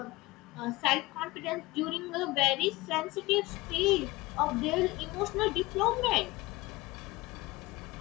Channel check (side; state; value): right; quieter; 20.7 dB